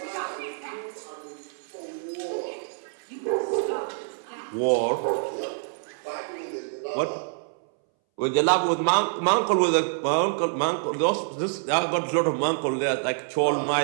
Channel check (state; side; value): silent; left; 61 dB below the other